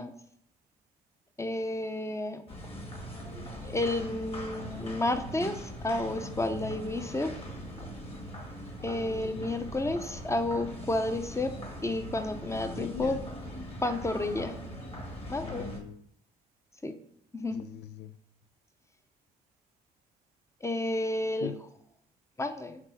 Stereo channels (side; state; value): both; normal; correlation 0.71